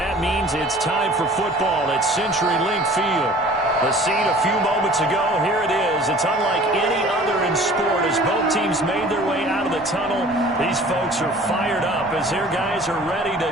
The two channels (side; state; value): both; normal; correlation 0.48